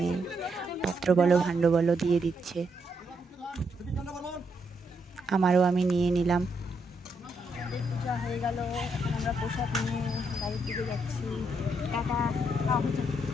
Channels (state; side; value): normal; both; correlation 0.78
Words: পাত্র বলো ভাণ্ড বলো দিয়ে দিচ্ছে। আমারও আমি নিয়ে নিলাম। হয়ে গেল, আমরা প্রসাদ নিয়ে বাড়ির দিকে যাচ্ছি।